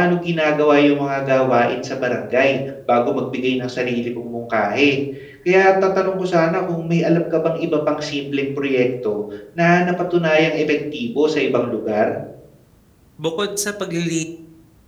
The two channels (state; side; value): identical; both; correlation 1.00